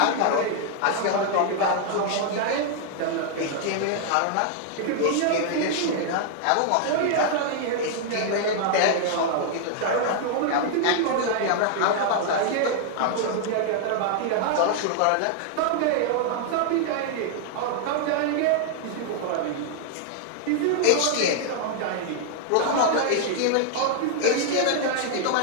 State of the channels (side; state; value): both; different; correlation 0.00